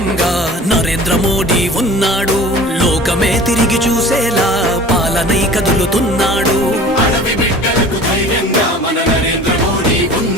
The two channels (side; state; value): both; normal; correlation 0.43